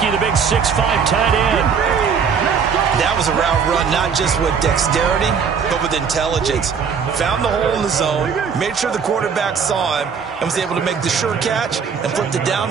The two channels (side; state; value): left; quieter; 6.4 dB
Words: the big 6'5" tight end. That was a route run, not just with dexterity, but with intelligence. Found the hole in the zone, made sure the quarterback saw him, and was able to make the sure catch and flip the down